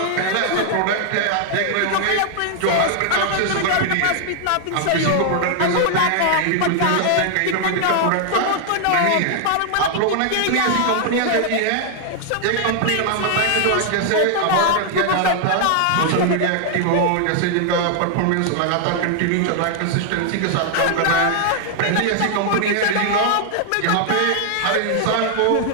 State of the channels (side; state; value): both; different; correlation 0.00